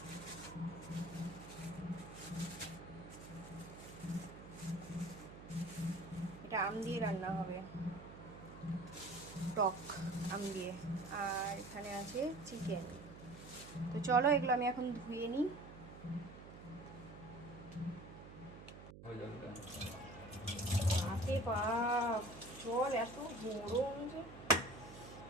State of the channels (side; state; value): right; noise; hum, 15 dB below the sound